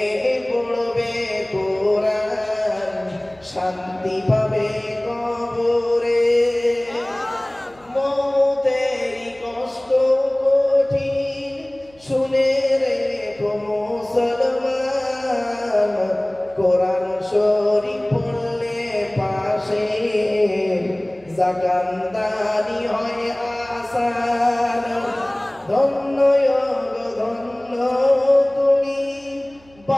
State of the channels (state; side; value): noise; right; hum, 28 dB below the sound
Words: পড়বে কোরআন, শান্তি পাবে কবরে। মৌতেরই কষ্ট কঠিন শুনে রেখো মুসলমান, কোরআন শরীফ পড়লে পাশে জাকান্দানি হয় আসান। ধন্য ধন্য তুমি